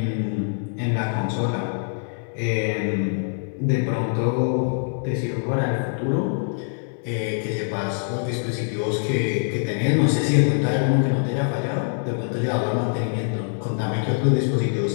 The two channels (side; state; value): right; silent; digital silence